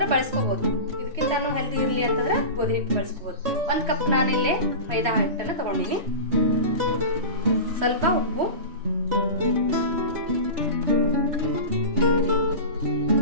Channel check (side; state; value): left; late; 3.1 ms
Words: ಬಳಸ್ಕೋಬಹುದು. ಇದಕ್ಕಿಂತ ಹೆಲ್ದಿ ಇರಲಿ ಅಂತಂದ್ರೆ ಗೋಧಿ ಹಿಟ್ಟು ಬಳಸ್ಕೋಬಹುದು. 1 ಕಪ್ ನಾನಿಲ್ಲೇ ಮೈದಾ ಹಿಟ್ಟನ್ನು ತಗೊಂಡಿನಿ. ಸ್ವಲ್ಪ ಉಪ್ಪು,